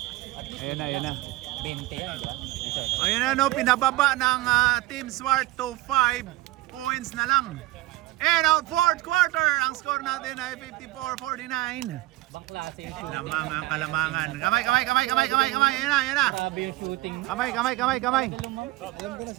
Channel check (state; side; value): quieter; left; 17.9 dB